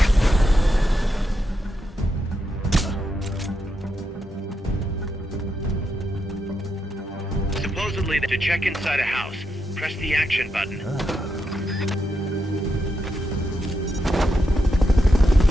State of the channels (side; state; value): both; normal; correlation 0.84